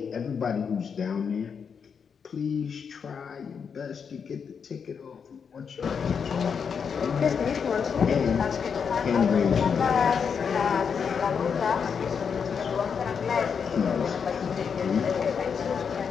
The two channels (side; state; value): right; quieter; 6.5 dB